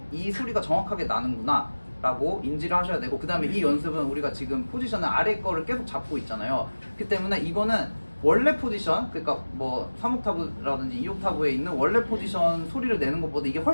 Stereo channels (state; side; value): inverted; both; correlation -1.00